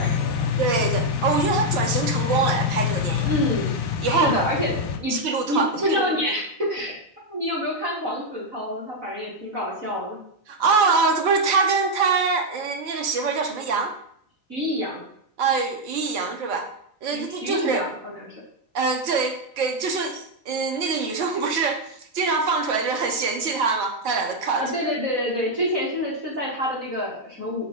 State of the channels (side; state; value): left; late; 4.5 ms